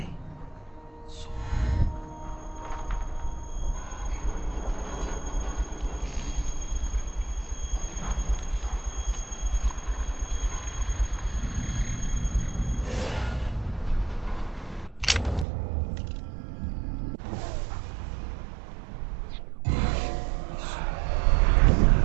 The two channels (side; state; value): left; drops out; at 15.5 s